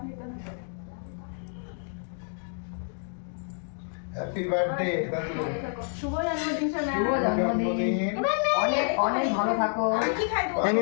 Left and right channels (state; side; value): silent; right; 59 dB below the other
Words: নিতে হবে। হ্যাপি বার্থডে দাদু। শুভ জন্মদিন সোনা। শুভ জন্মদিন, অনেক অনেক ভালো থাকো। আমি কি খাই এই